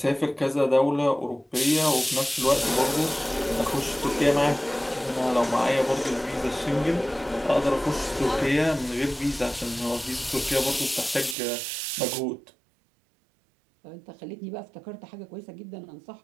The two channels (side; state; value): left; drops out; at 11.4 s